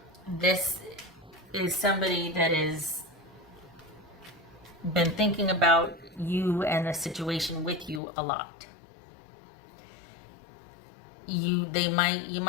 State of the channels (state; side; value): drops out; right; at 8.0 s